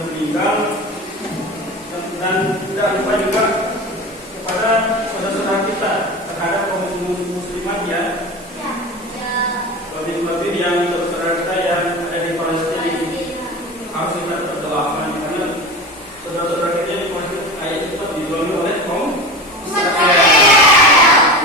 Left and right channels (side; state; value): both; normal; correlation 0.29